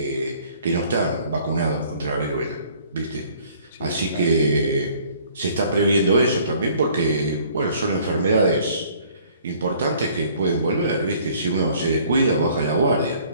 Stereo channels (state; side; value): inverted; both; correlation -0.57